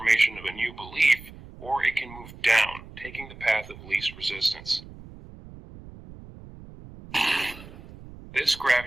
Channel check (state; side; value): noise; right; rumble, 17 dB below the sound